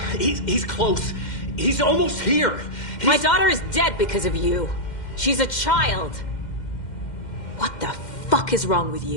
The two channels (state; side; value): late; right; 2.1 ms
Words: He's close. He's almost here. My daughter is dead because of you. She's a child. What the fuck is wrong with